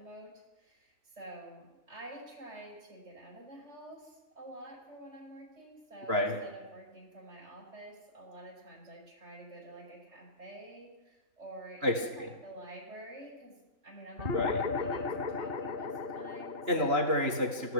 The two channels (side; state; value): left; late; 3.0 ms